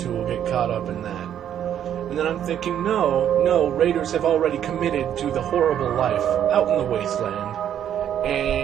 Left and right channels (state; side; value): quieter; left; 9.9 dB